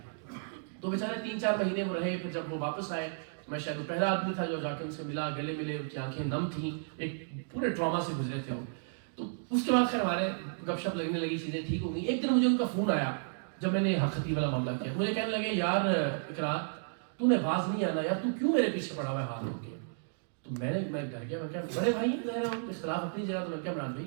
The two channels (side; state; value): left; silent; digital silence